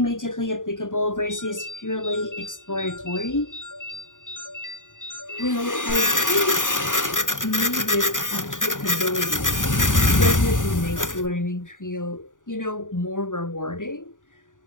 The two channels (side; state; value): right; late; 0.88 ms